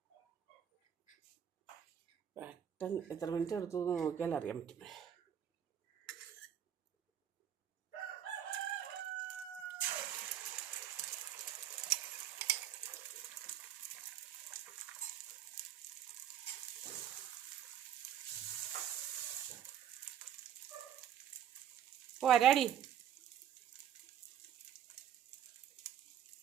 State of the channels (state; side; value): quieter; left; 9.7 dB